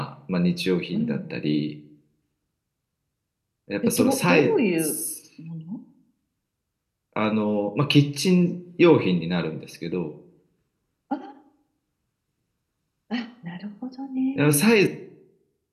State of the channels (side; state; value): both; identical; correlation 1.00